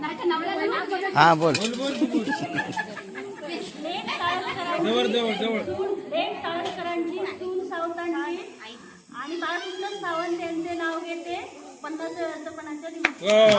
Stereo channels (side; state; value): both; identical; correlation 1.00